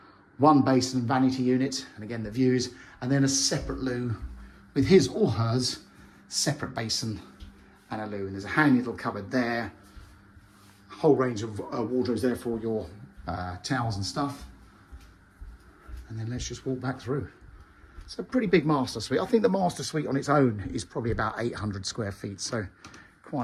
one basin and vanity unit, and again the views, and then a separate loo with his or hers separate basin and a loo. And there's a handy little cupboard there, a whole range of wardrobes there for your towels and stuff. And then let's just walk back through. It's a pretty big master suite. I think the master suite on its own is probably about 800 square feet, so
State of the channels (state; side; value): identical; both; correlation 1.00